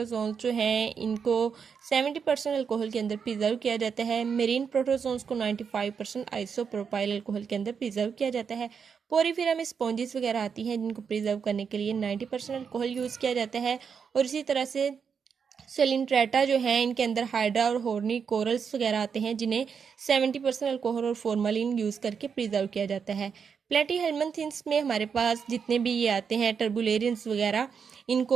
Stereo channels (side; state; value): left; quieter; 6.5 dB